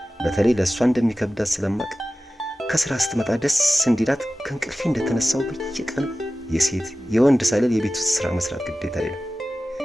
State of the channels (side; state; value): both; normal; correlation 0.95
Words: በተለይ ለእሷ እንደሚከብዳት ስለማቅ ከስራ ስትመጣ ደስ እንዲላት ከእንቅልፌ እንደተነሳው በየቀኑ የሴት የወንድ ሳይል የቤት ውስጥ ስራ መስራት ግዴታዬ ነው።